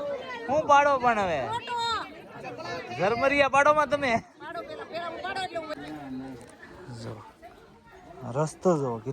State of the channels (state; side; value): identical; both; correlation 1.00